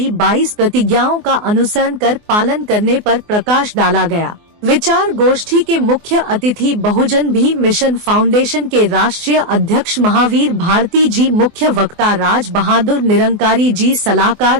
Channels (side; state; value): left; late; 24 ms